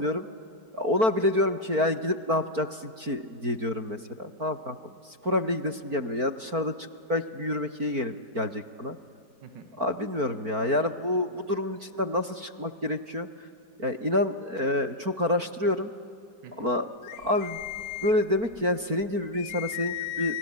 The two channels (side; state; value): left; late; 4.5 ms